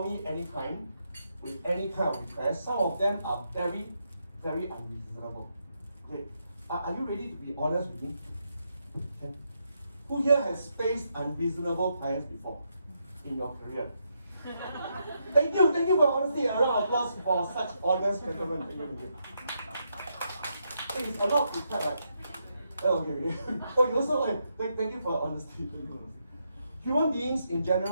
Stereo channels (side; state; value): both; inverted; correlation -0.80